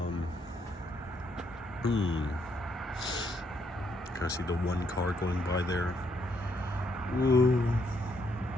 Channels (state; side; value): normal; both; correlation 0.74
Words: kind of see the one car going by there. Ooh.